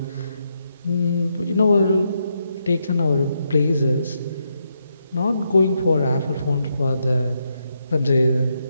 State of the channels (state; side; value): inverted; both; correlation -0.81